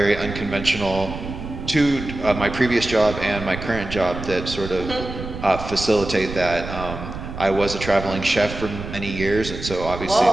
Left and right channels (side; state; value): right; noise; rumble, 9 dB below the sound